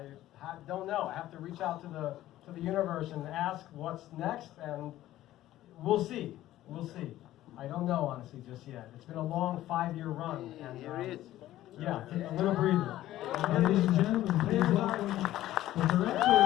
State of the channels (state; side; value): quieter; right; 14.3 dB